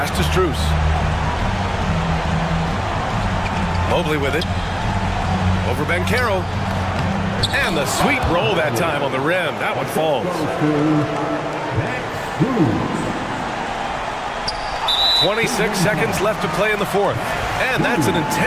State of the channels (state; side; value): identical; both; correlation 1.00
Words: to Strus. Mobley with it. Over Banchero. And the sweet roll that time on the rim. That one falls. 26 seconds left to play in the fourth. And that's an